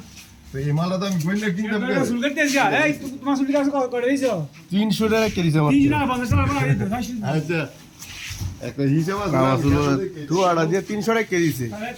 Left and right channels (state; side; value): identical; both; correlation 1.00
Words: এই মালটা তো আমি গোয়েন্দা কিনতাম 300 টাকা কেজিছে আচ্ছা একটা হিসাব আছে তুই আড়া দিয়ে 300 টাকা কেজিছে